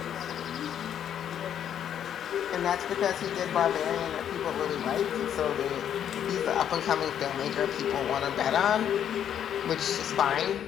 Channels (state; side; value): quieter; right; 9.5 dB